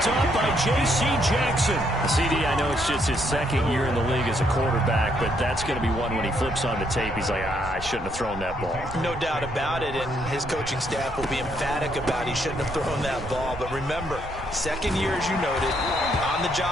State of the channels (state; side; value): noise; right; rumble, 12 dB below the sound